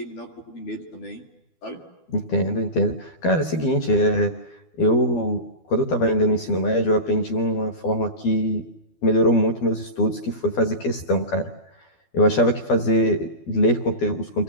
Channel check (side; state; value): right; late; 12 ms